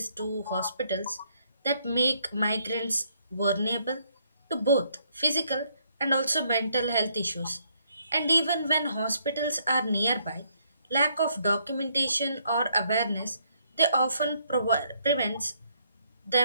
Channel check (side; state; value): both; inverted; correlation -0.71